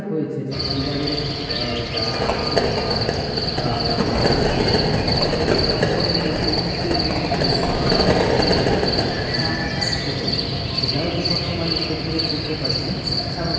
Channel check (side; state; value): both; identical; correlation 1.00